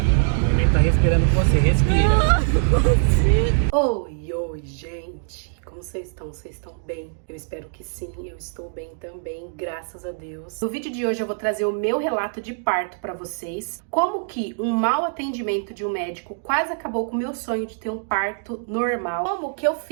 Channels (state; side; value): silent; left; digital silence